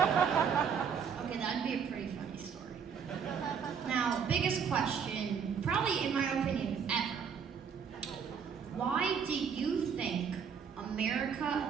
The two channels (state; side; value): quieter; left; 6.9 dB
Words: that'd be a pretty funny story. Now, biggest question, probably in my opinion, ever. Why do you think